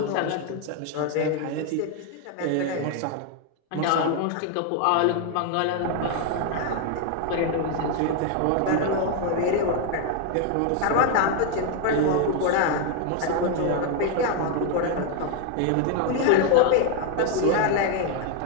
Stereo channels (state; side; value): different; both; correlation 0.01